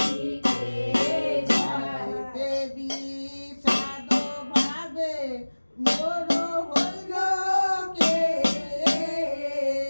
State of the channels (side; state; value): both; inverted; correlation -1.00